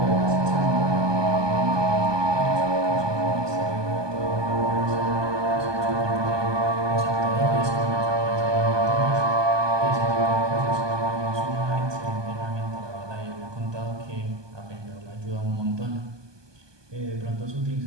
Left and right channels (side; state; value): left; late; 1.2 ms